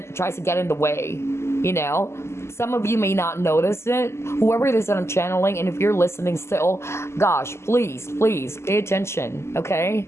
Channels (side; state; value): right; late; 0.13 ms